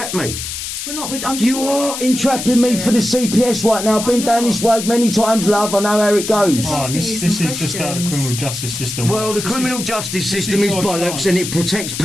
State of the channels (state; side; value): noise; left; hiss, 6 dB below the sound